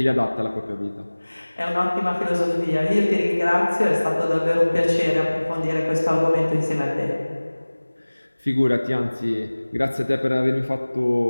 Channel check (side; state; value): both; inverted; correlation -1.00